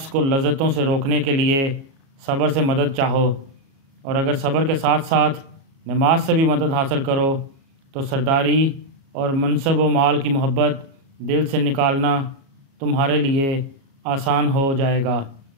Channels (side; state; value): left; late; 37 ms